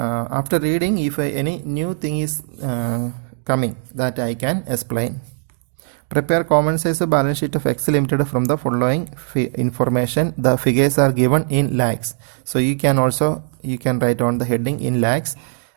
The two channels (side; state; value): left; silent; digital silence